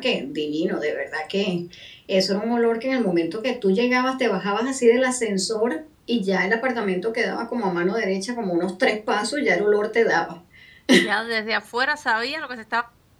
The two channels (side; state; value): both; identical; correlation 1.00